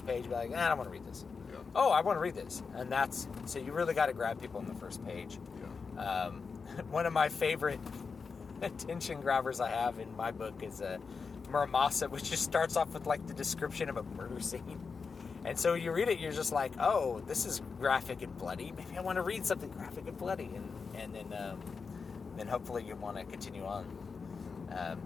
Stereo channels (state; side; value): quieter; right; 5.1 dB